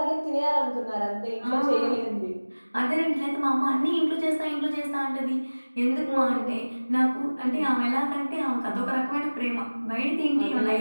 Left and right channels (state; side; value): inverted; both; correlation -1.00